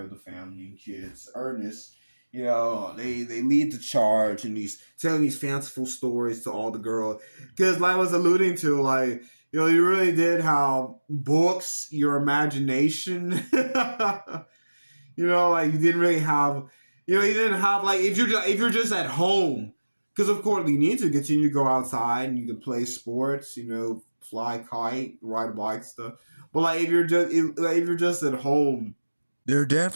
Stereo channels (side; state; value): both; inverted; correlation -1.00